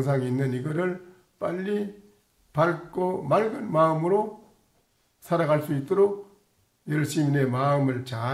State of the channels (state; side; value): identical; both; correlation 1.00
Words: 있는 이거를 빨리 밝고 맑은 마음으로 살아갈 수 있도록 열심히 내 마음을